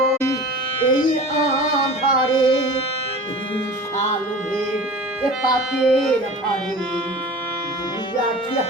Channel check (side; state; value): both; normal; correlation 0.38